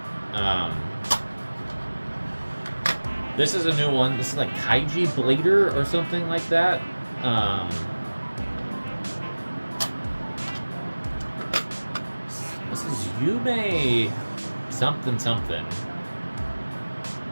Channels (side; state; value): both; inverted; correlation -1.00